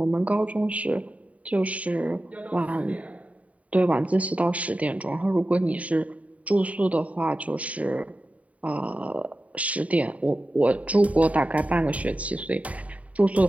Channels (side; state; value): left; late; 0.068 ms